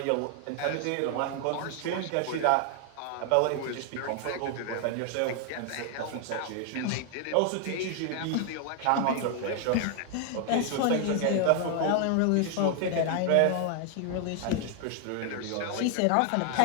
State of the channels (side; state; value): both; different; correlation 0.00